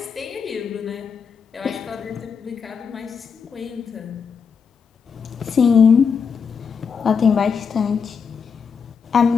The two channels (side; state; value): right; quieter; 6.1 dB